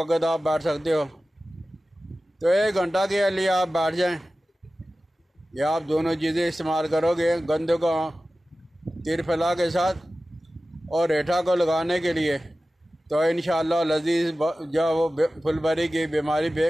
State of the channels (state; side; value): normal; both; correlation 0.95